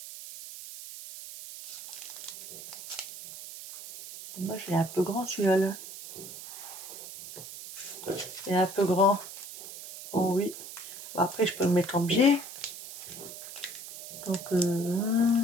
Moi, je l'ai un peu grand celui-là. Là. Il est un peu grand. Oh oui. Après, je peux le mettre en biais. Donc,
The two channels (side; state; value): right; noise; hiss, 12 dB below the sound